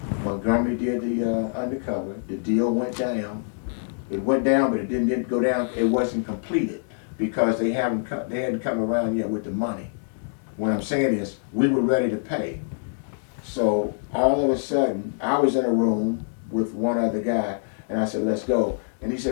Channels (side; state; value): right; silent; digital silence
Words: Montgomery did the undercover. The deal went down. It went down, but it didn't go down. It wasn't completed because they hadn't come around yet with the money. What I'm saying is, we were ready to pay. So all of a sudden, I was in a room with one other guy, and I said, let's go. And he